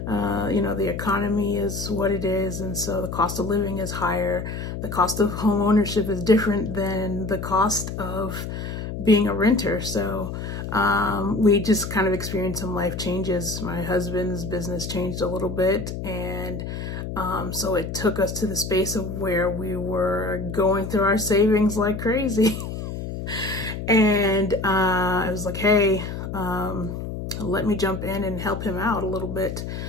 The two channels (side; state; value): left; noise; hum, 6 dB below the sound